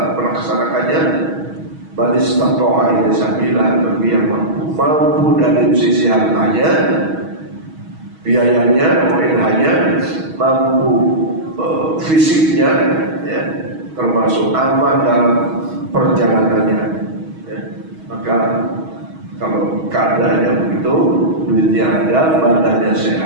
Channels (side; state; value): left; late; 6.3 ms